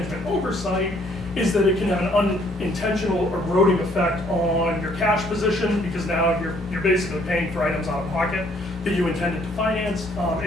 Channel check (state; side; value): normal; both; correlation 0.64